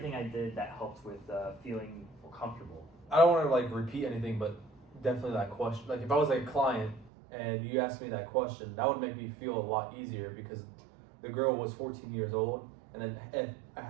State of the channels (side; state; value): left; drops out; at 7.1 s